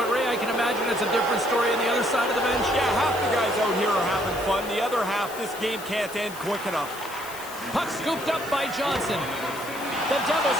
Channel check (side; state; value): left; noise; hiss, 14 dB below the sound